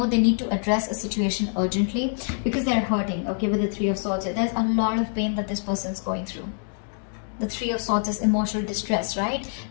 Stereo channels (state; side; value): silent; right; digital silence